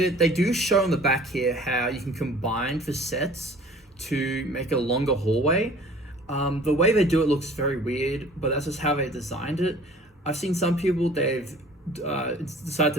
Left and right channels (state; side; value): normal; both; correlation 0.49